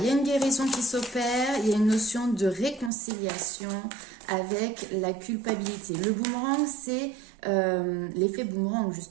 y a une guérison qui s'opère. Il y a une notion de réconciliation avec la culpabilité. Le boomerang, c'est l'effet boomerang,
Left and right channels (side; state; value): left; drops out; at 2.9 s